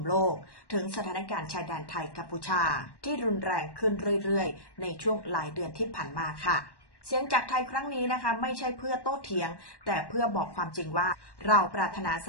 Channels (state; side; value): late; right; 1.1 ms